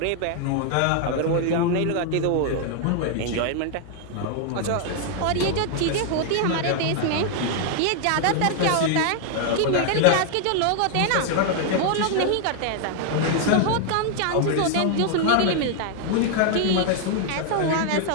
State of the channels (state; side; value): different; both; correlation 0.00